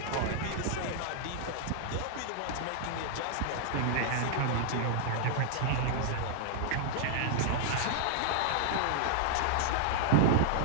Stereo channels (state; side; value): different; both; correlation -0.01